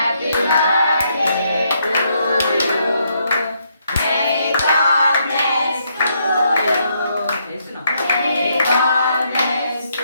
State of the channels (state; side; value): inverted; both; correlation -0.75